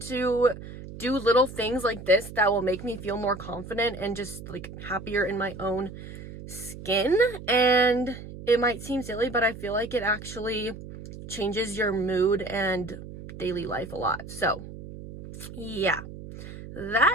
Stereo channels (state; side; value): noise; right; hum, 13 dB below the sound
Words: to do little things like this that will make me feel more confident and just like happier in my own skin. And it might seem silly, but I feel like it actually changes your mood and daily life a lot. So yeah,